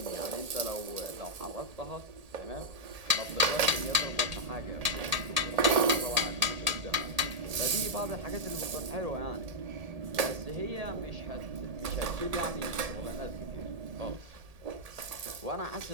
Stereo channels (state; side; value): late; left; 1.8 ms